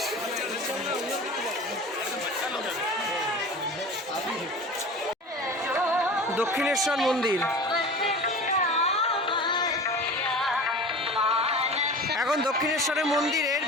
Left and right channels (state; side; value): normal; both; correlation 0.36